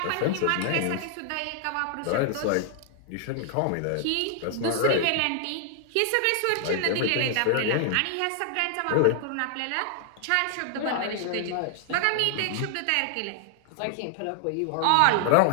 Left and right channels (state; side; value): different; both; correlation 0.00